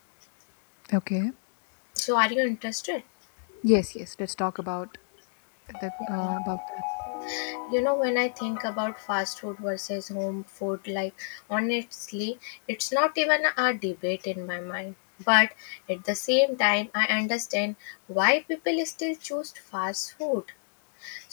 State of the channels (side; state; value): right; silent; digital silence